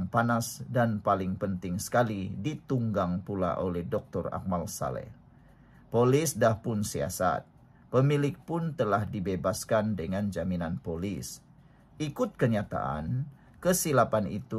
panas dan paling penting sekali ditunggang pula oleh Dr. Akmal Saleh. Polis dah pun siasat. Pemilik pun telah dibebaskan dengan jaminan polis. Ikut kenyataan, kesilapan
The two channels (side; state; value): both; identical; correlation 1.00